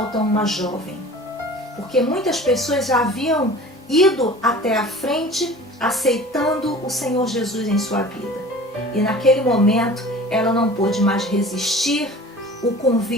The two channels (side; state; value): both; normal; correlation 0.42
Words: uma jovem. Porque muitas pessoas já haviam ido até a frente aceitando o Senhor Jesus em sua vida. E naquele momento ela não pôde mais resistir o